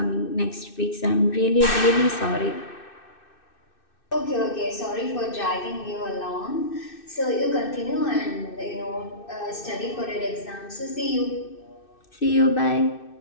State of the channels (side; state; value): right; late; 2.6 ms